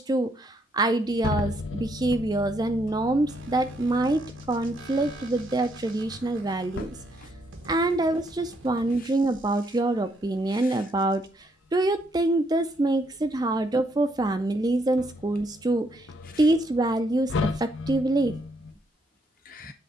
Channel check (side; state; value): both; normal; correlation 0.73